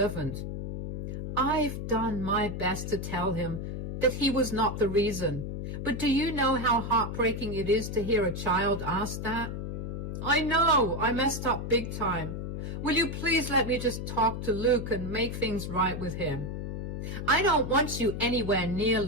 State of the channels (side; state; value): left; noise; hum, 5 dB below the sound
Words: I've done my best to tell him that he was not the reason. But do you know how heartbreaking it is to hear a child ask that? I know, I messed up big time. Will you please let me just talk to Luke and make things right with him? I don't want you anywhere near